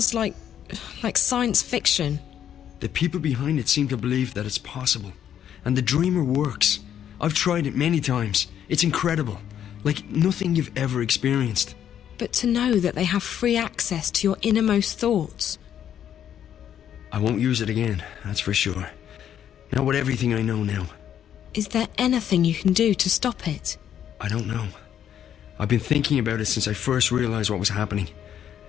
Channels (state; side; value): quieter; right; 9.8 dB